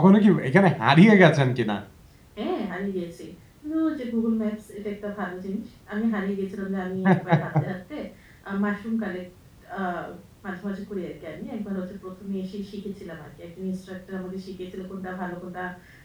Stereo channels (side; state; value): both; identical; correlation 1.00